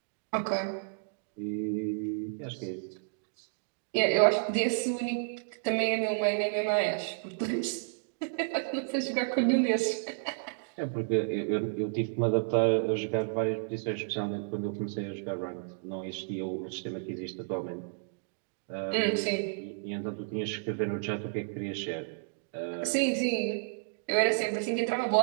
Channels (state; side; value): silent; left; digital silence